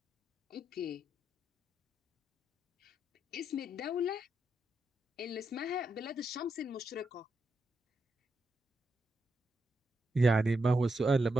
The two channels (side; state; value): both; normal; correlation 0.83